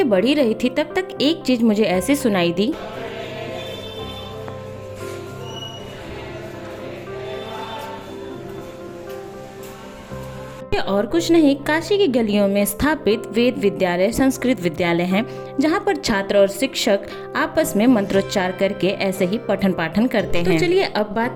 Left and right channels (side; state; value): both; identical; correlation 1.00